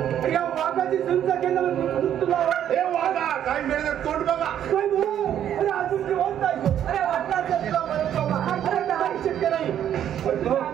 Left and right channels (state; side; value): quieter; left; 10.2 dB